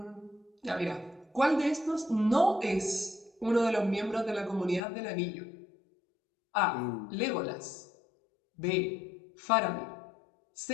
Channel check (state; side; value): drops out; right; at 4.8 s